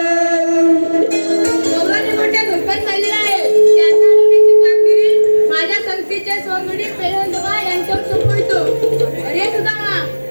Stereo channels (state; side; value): inverted; both; correlation -1.00